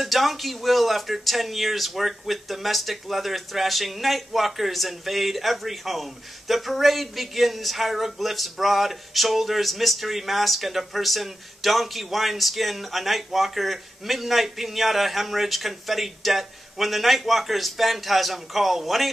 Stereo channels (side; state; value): both; normal; correlation 0.92